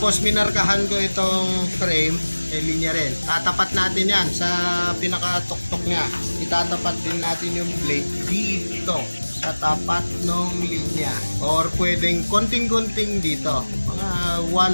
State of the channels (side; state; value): both; inverted; correlation -1.00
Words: minarkahan ko itong frame, may linya rin. Tatapat natin yan sa pinakatuktok niya. Itatapat din natin yung blade dito sa tapat ng linya. Or pwedeng konting-konting dito. Mga